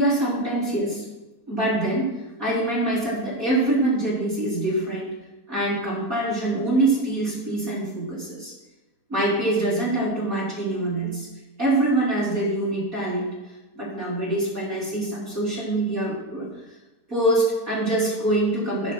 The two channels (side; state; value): left; late; 4.2 ms